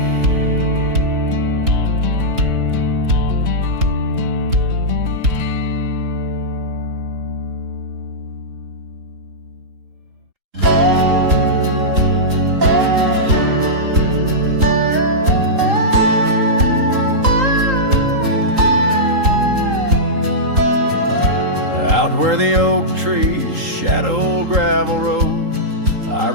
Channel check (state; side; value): late; left; 3.8 ms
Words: Where the oak trees shadow gravel road, I